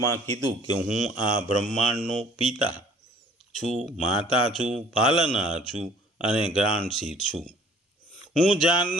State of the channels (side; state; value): both; normal; correlation 0.54